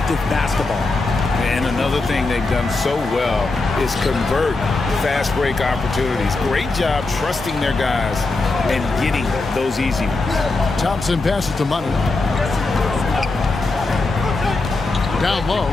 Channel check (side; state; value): right; quieter; 3.4 dB